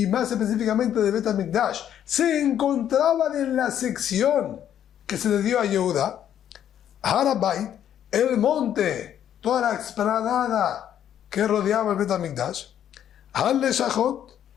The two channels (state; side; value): quieter; right; 10.2 dB